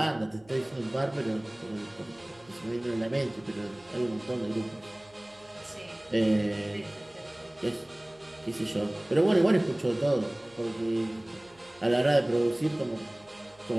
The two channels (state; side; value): noise; left; hum, 28 dB below the sound